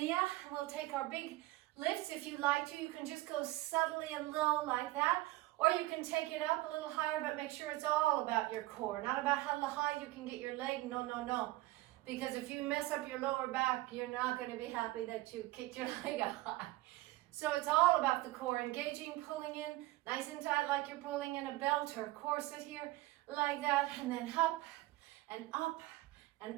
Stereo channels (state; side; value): quieter; left; 18.8 dB